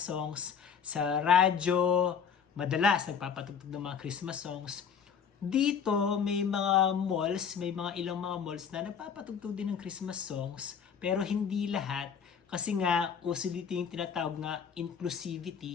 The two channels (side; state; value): right; quieter; 7.1 dB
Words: Sa radyo, madalas nagpapatugtog ng mga Christmas songs. Dito may mga malls, may mga ilang mga malls na nagpapatugtog din ng Christmas songs, pero hindi lahat kasi nga uso dito yung tinatawag na